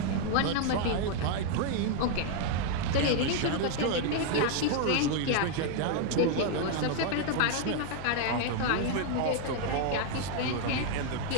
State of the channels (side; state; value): both; different; correlation 0.00